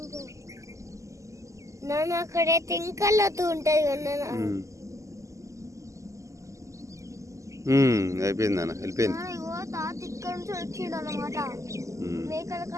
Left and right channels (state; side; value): late; left; 0.15 ms